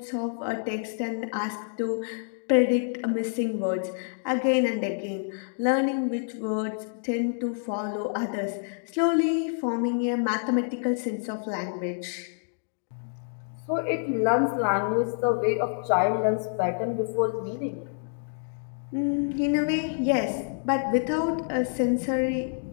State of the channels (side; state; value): right; silent; digital silence